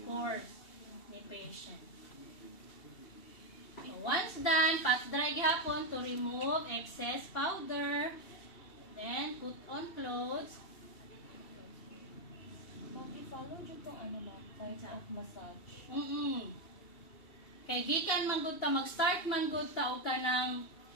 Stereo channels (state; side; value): late; right; 2.7 ms